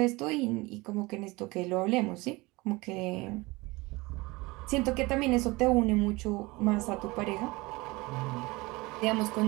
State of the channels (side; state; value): left; quieter; 22.9 dB